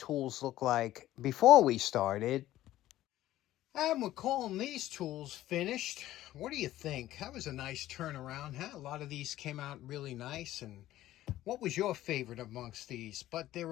look like before we started. And we're calling these tools finished. What do you think? That was a nice turnaround, huh? A lot of these came out really nice. And what was your favorite amongst these? But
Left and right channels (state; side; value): quieter; right; 14.4 dB